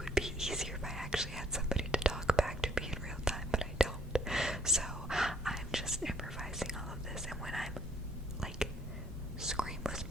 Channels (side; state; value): both; normal; correlation 0.65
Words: be easier if I actually had somebody to talk back to me in real time, but I don't. So I'm just improvising all of this, and when I'm like scream